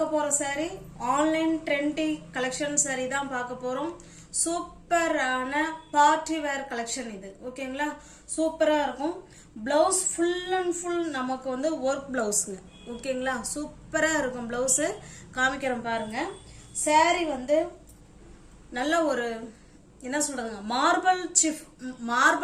போற sorry online trendy collection sorry தான் பார்க்க போறோம். சூப்பரான பார்ட்டி வேர் கலெக்ஷன் இது. ஓகேங்களா, சூப்பரா இருக்கும். பிளவுஸ் ஃபுல் அண்ட் ஃபுல் நமக்கு வந்து ஒர்க் பிளவுஸ்ங்க. ஓகேங்களா, சூப்பரா இருக்கும். பிளவுஸ் காமிக்கிறோம் பாருங்க. சாரி வந்து நல்ல ஒரு என்ன சொல்றதுங்க,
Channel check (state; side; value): identical; both; correlation 1.00